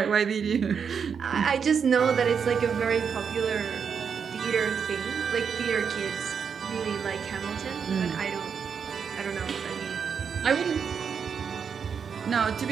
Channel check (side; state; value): left; quieter; 6.6 dB